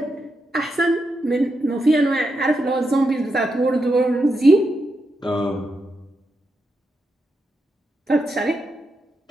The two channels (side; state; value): both; normal; correlation 0.85